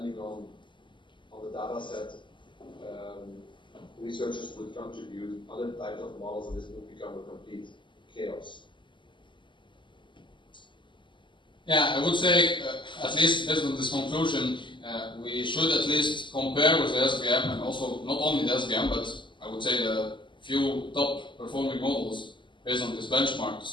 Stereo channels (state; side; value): late; right; 0.24 ms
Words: on the data set, researchers would contribute other types of models, and this would become a complete chaos? I would say, at least based on this conclusion, we should at least compare with the SVM, and also not only the SVM, but I would say the few top performing models based on this benchmark to